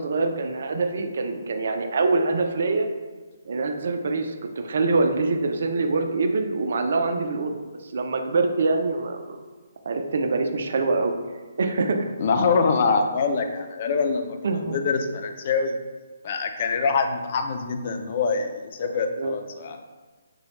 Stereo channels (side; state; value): both; inverted; correlation -0.71